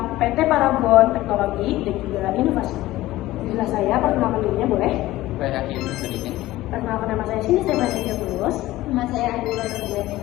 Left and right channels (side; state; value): right; quieter; 16.7 dB